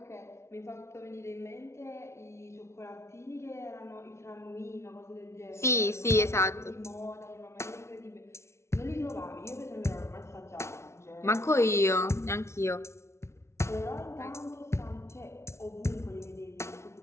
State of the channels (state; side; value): late; right; 0.13 ms